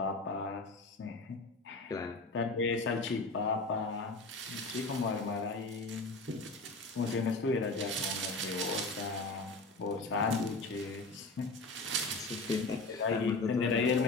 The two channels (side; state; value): right; quieter; 3.2 dB